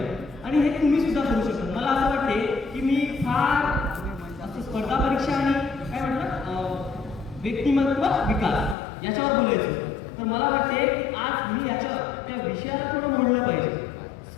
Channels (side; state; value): right; drops out; at 8.8 s